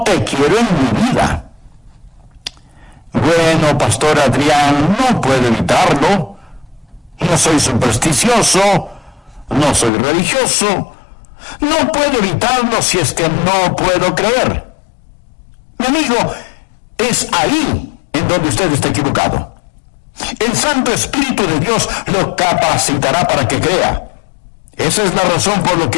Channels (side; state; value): right; drops out; at 9.9 s